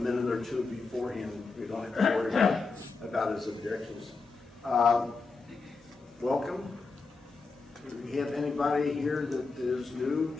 or two beforehand. We don't have to worry about his objections. Welcome. Do we have anybody here that is new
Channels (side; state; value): right; quieter; 4.2 dB